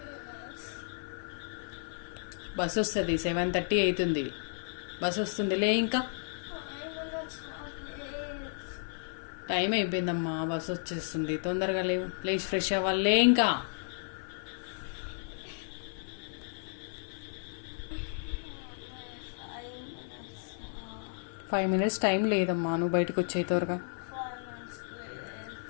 Bus వస్తుంది, 7:30 అవుతుంది. బస్ వస్తుందిలే. ఇంకా టైం అయిపోయిందమ్మా, బస్ వచ్చేస్తుంది. తొందరగా లేవు, లేచి ఫ్రెష్ అవ్వాలే. ఇంకా 5 minutes టైం లేదమ్మా. నువ్వు బయటకు వచ్చే త్వరగా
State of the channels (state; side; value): silent; right; 56 dB below the other